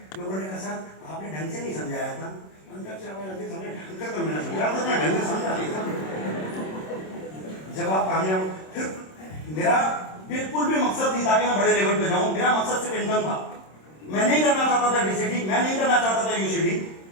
लोगों ने कहा सर आपने ढंग से नहीं समझाया था। अंदर से आवाज आती, ढंग से तो मैंने समझाया था, मैं ढंग से समझा नहीं था। जब आप कामयाब, फिर मेरा बिल्कुल भी मकसद नहीं था कि मैं बड़े लेवल पे जाऊं, मेरा मकसद सिर्फ इनकम था। मैं नहीं करना चाहता था डीसीडी, मैं नहीं करना चाहता था यूसीडी,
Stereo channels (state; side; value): late; right; 26 ms